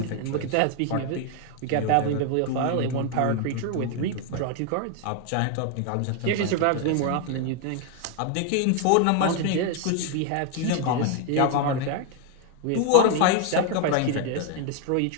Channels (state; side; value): different; both; correlation 0.01